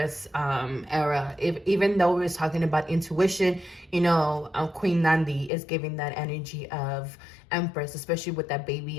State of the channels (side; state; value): right; drops out; at 5.5 s